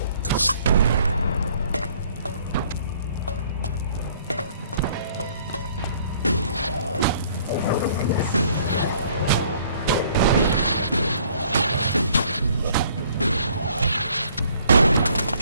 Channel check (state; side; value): inverted; both; correlation -0.60